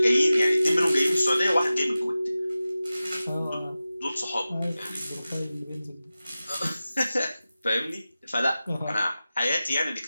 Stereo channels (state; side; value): inverted; both; correlation -0.95